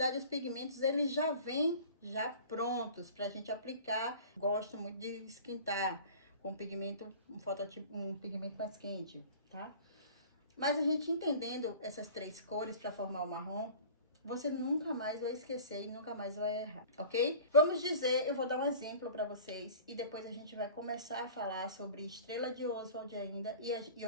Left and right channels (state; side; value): inverted; both; correlation -0.43